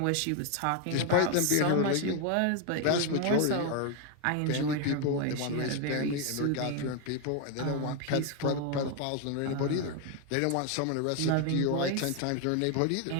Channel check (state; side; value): different; both; correlation 0.01